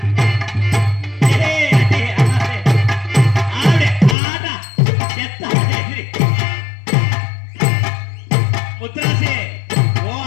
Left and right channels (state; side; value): drops out; right; at 4.2 s